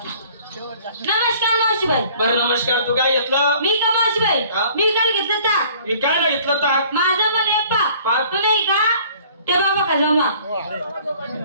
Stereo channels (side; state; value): both; inverted; correlation -0.53